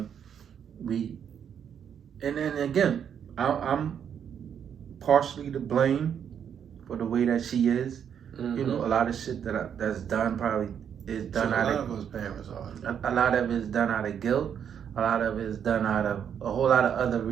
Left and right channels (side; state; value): left; quieter; 8.3 dB